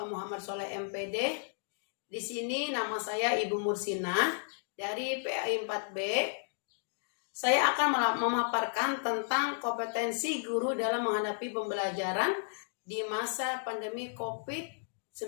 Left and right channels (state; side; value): silent; right; digital silence